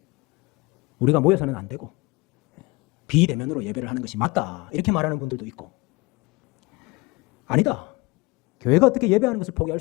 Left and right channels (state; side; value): quieter; right; 23.8 dB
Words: 우리가 모여서는 안 되고 비대면으로 예배를 하는 것이 맞다. 이렇게 말하는 분들도 있고, 아니다. 교회가 어떻게 예배하는 것을 포기할